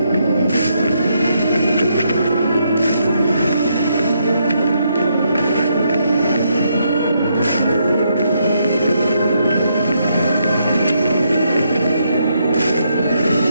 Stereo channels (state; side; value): inverted; both; correlation -0.77